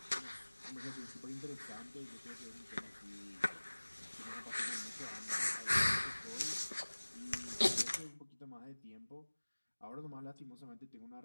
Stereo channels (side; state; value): both; inverted; correlation -1.00